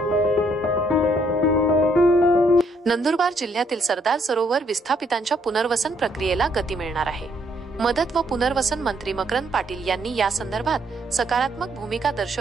नंदुरबार जिल्ह्यातील सरदार सरोवर विस्थापितांच्या पुनर्वसन प्रक्रियेला गती मिळणार आहे। मदत व पुनर्वसन मंत्री मकरंद पाटील यांनी या संदर्भात सकारात्मक भूमिका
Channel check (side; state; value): both; normal; correlation 0.70